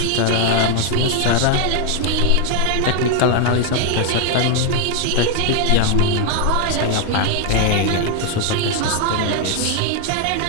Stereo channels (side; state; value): both; different; correlation 0.01